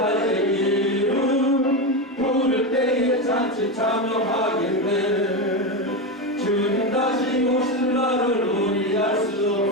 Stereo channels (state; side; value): normal; both; correlation 0.14